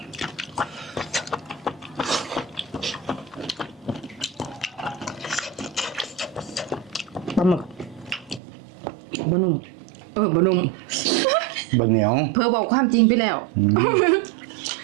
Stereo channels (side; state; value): left; drops out; at 8.4 s